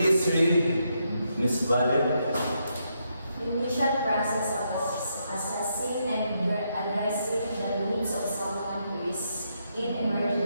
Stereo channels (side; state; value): both; inverted; correlation -0.79